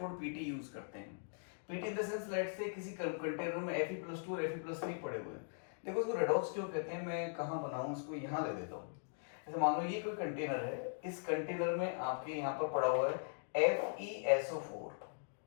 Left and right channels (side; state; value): right; silent; digital silence